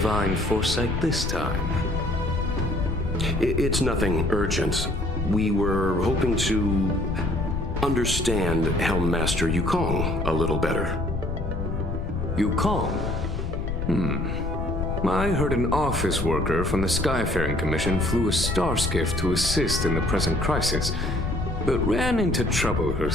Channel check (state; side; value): noise; left; rumble, 3 dB below the sound